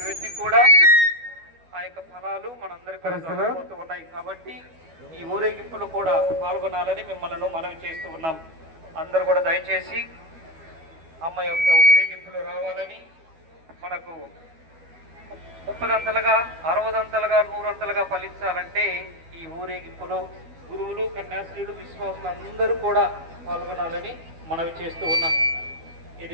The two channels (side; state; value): left; late; 12 ms